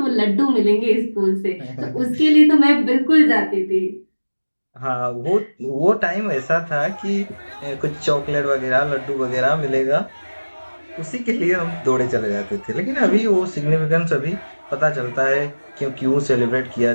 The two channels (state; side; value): inverted; both; correlation -1.00